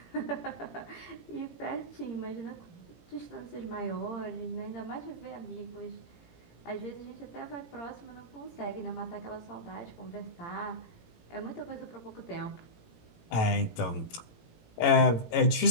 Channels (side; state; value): right; late; 17 ms